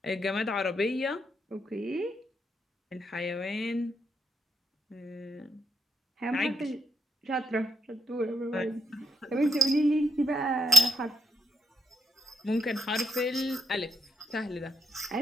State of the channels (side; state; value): both; normal; correlation 0.79